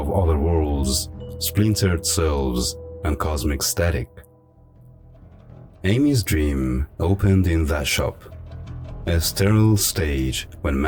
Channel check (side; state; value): both; identical; correlation 1.00